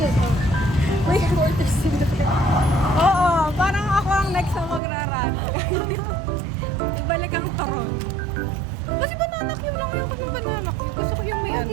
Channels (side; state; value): left; drops out; at 4.8 s